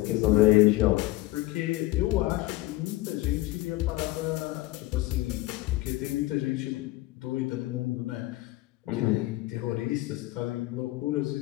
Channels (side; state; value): right; quieter; 18.4 dB